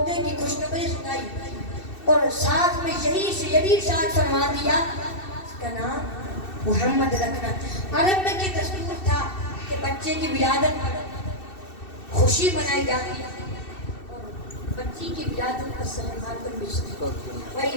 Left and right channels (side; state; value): right; late; 2.7 ms